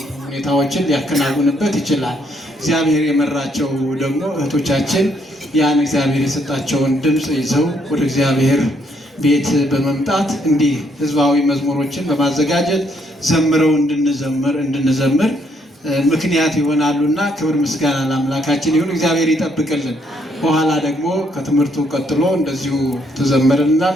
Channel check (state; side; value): normal; both; correlation 0.72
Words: ሁኔታዎችን ሊያከናውንበት ይችላል። እግዚአብሔር የመራቸው ደግሞ እህቶቻችን ያን እግዚአብሔር የሰጣቸውን ድምፅ ይዘው ወደ እግዚአብሔር ቤት በመምጣት እንዲህ ህዝባዊ መዝሙሮችን በማዘጋጀት ዘምረው እንድንዘምር ምክንያት ይሆናሉና ክብር ምስጋና ለአምላካችን ይሁን። እግዚአብሔር ይጠብቅልን። በኋላ ደግሞ ከትምህርቱ ቀጥሎ እንደዚሁ